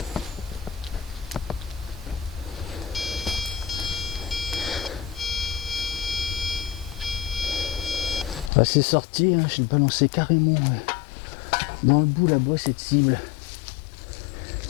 Ah, c'est sorti, hein, je l'ai balancé carrément dans le bout là-bas cette cible.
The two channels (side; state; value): right; drops out; at 8.5 s